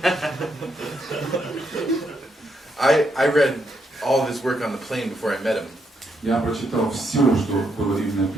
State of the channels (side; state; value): both; normal; correlation 0.78